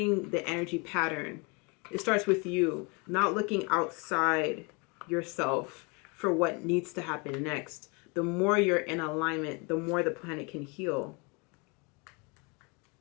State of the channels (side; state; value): right; quieter; 30.8 dB